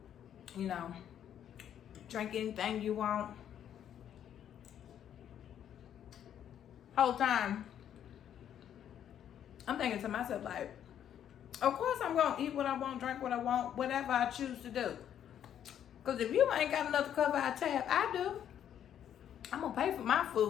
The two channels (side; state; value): right; quieter; 9.8 dB